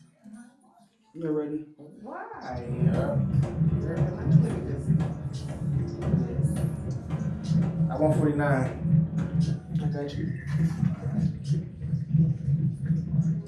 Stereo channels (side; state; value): both; identical; correlation 1.00